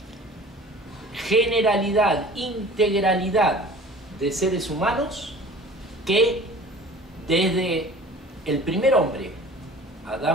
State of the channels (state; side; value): normal; both; correlation 0.44